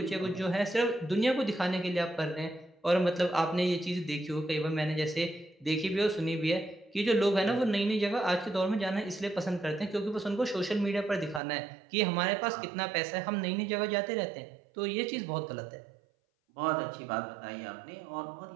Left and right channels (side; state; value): left; drops out; at 11.4 s